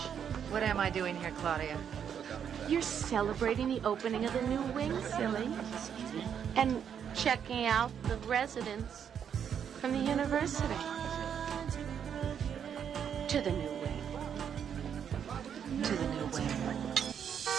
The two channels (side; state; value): left; quieter; 8.2 dB